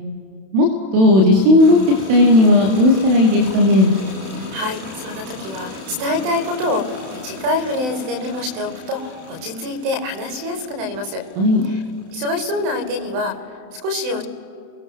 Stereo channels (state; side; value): late; left; 31 ms